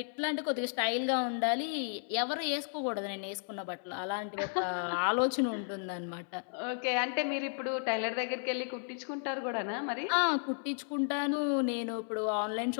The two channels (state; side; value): silent; right; 55 dB below the other